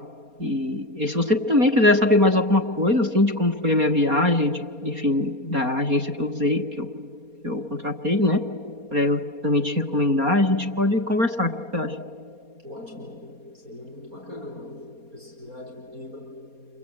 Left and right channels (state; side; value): late; left; 4.3 ms